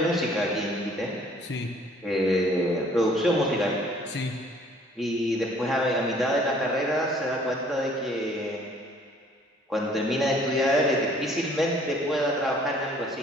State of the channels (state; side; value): normal; both; correlation 0.58